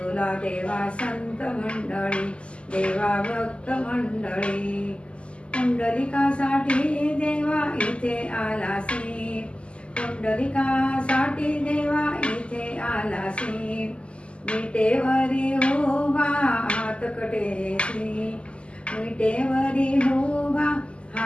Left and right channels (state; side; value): late; right; 0.054 ms